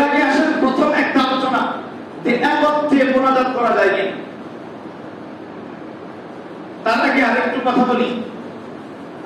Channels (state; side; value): identical; both; correlation 1.00